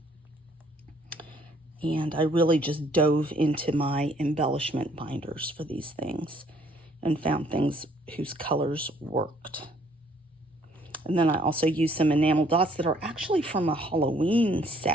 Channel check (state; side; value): normal; both; correlation 0.63